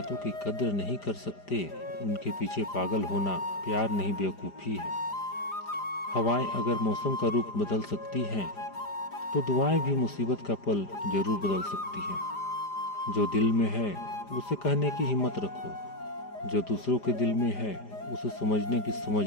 की कद्र नहीं कर सकते, उनके पीछे पागल होना प्यार नहीं बेवकूफ़ी है। हवाएं अगर मौसम का रूप बदल सकती हैं, तो दुआएं भी मुसीबत का पल जरूर बदल सकती हैं। जो दिल में है उसे कहने की हिम्मत रखो, जो दूसरों के दिल में है उसे समझने की समझ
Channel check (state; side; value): late; right; 5.0 ms